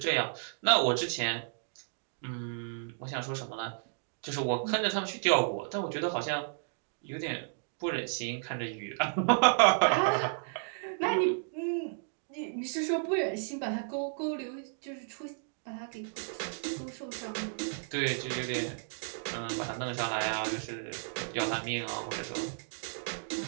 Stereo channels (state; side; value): silent; left; digital silence